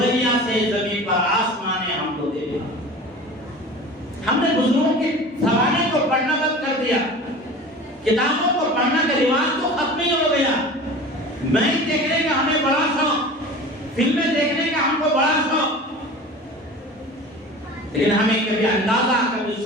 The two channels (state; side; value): normal; both; correlation 0.37